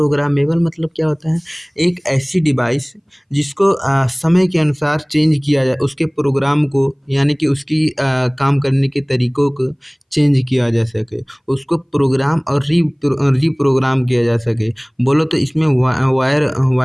मतलब क्या होता है? एक ऐसी डिवाइस जिसको समय के अनुसार चेंज किया जाए, उसके प्रोग्राम को यानी कि उसकी काम करने के तरीकों को चेंज किया जा सके, उसको प्रोग्राम और रीप्रोग्राम किया जा सके। बोलो तो इसमें वायर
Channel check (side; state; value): both; identical; correlation 1.00